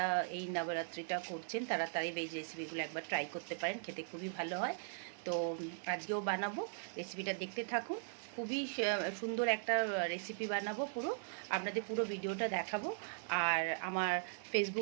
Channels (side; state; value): left; silent; digital silence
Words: এই নবরাত্রিটা করছেন তারা তাই ভেজ রেসিপিগুলো একবার ট্রাই করতে পারেন, খেতে খুবই ভালো হয়। তো আজকেও বানাবো, রেসিপিটা দেখতে থাকুন। খুবই সুন্দর একটা রেসিপি বানাবো, আপনাদের পুরো ভিডিওটা দেখাবো। আর আমার